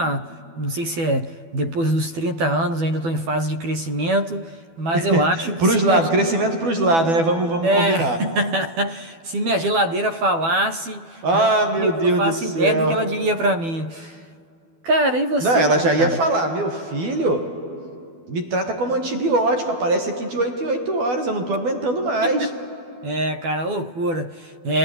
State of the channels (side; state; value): left; late; 12 ms